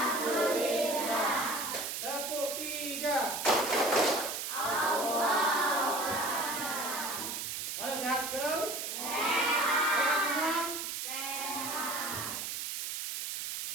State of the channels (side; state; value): right; noise; hiss, 4 dB below the sound